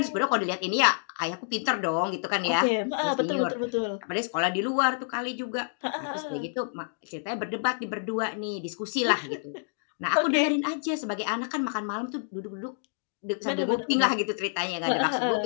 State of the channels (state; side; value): silent; right; digital silence